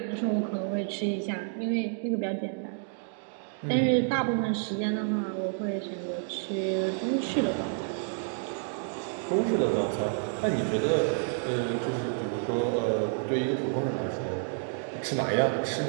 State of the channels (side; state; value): left; silent; 58 dB below the other